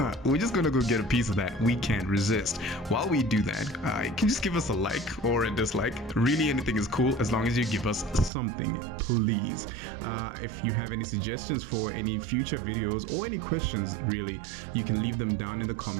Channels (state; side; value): drops out; left; at 8.3 s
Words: we're just gonna go get a piece of that. We can't resist. While we do that, you can just give us a like or a dislike. Really, anything is cool as long as you give us something, please. If you have any suggestions for any future videos or any questions, really, you can leave them down in the